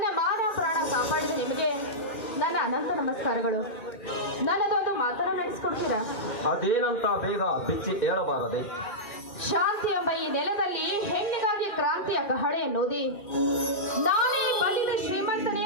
ಮಾನ ಪ್ರಾಣ ಕಾಪಾಡಿದ ನಿಮಗೆ ನನ್ನ ಅನಂತ ನಮಸ್ಕಾರಗಳು. ನನ್ನದೊಂದು ಮಾತನ್ನ ನಡೆಸ್ಕೊಡ್ತೀರಾ? ಅದೇನಂತ ಬೇಗ ಬಿಚ್ಚಿ ಹೇಳಬಾರದೆ? ಶಾಂತಿ ಎಂಬ ಈ ನೆಲದಲ್ಲಿ ಹೆಣ್ಣಿಗಾಗಿ ಕ್ರಾಂತಿಯ ಕಹಳೆ ಎನ್ನುವುದೇ ನಾನೇ ಬಂದಿದ್ದ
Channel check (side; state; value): right; late; 2.4 ms